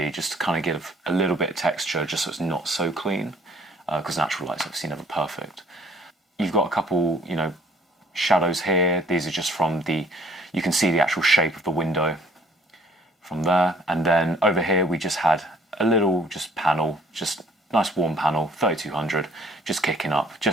just to kind of give a little bit of texture, just so it's not so clean, because natural light's obviously never perfect. You've got a couple, shadows here. These are just from you can see the actual shape of the window from there. And then over here we just had a little panel, just nice warm panel, 3200, just kicking up,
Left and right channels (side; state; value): both; normal; correlation 0.58